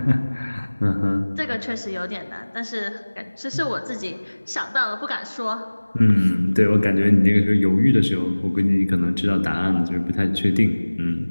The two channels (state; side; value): inverted; both; correlation -1.00